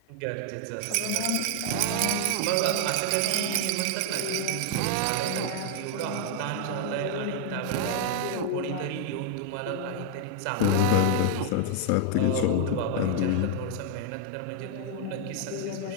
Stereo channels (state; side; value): different; both; correlation 0.00